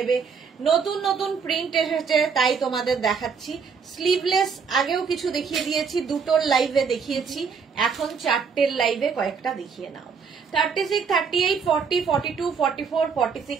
নতুন নতুন প্রিন্ট এসেছে তাই তোমাদের দেখাচ্ছি স্লিভলেস আগেও কিছু দেখিয়ে দিয়েছি দুটোর লাইভে দেখিয়েছি এখন চারটের লাইভে কয়েকটা দেখিয়ে নাও 36 38 40 42 44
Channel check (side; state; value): left; quieter; 5.9 dB